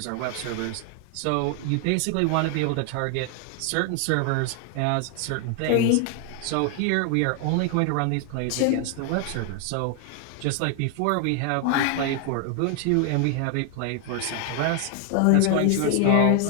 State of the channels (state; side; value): different; both; correlation 0.00